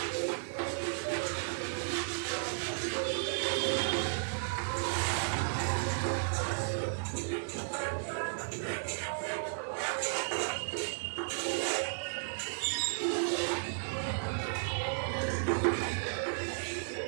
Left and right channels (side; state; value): left; silent; digital silence